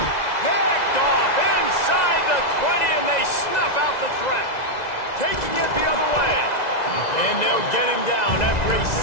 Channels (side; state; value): right; late; 2.0 ms